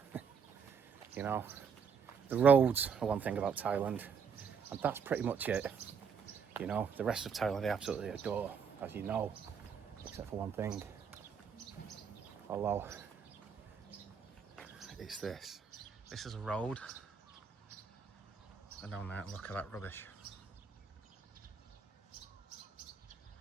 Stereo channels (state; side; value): quieter; left; 6.5 dB